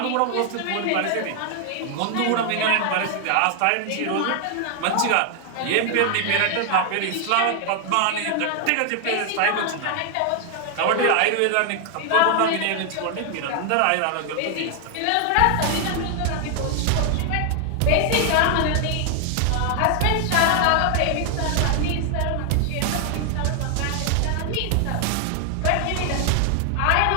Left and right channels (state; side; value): different; both; correlation 0.00